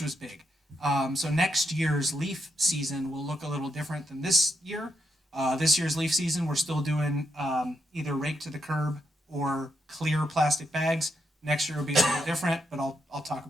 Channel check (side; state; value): both; normal; correlation 0.81